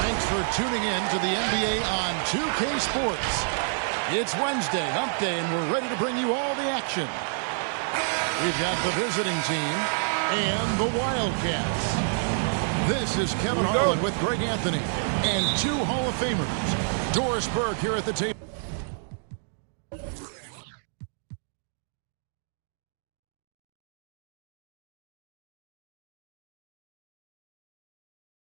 Thanks for tuning in to the NBA on 2K Sports. It's Wednesday, hump day, and we're ready to bring you all the action. We've got the visiting team and the Wildcats. This is Kevin Harlan with Greg Anthony and two Hall of Famers. Doris Burke here at the table.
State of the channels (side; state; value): left; silent; digital silence